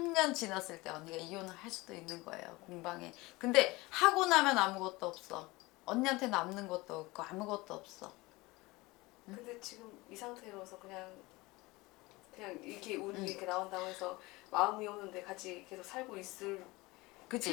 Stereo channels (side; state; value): right; quieter; 22.0 dB